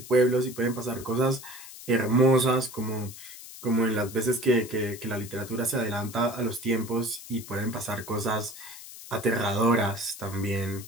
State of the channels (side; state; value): left; noise; hiss, 15 dB below the sound